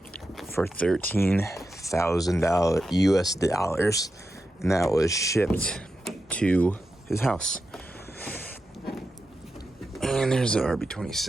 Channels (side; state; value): both; normal; correlation 0.89